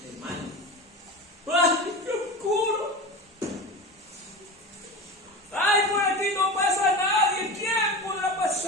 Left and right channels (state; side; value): normal; both; correlation 0.28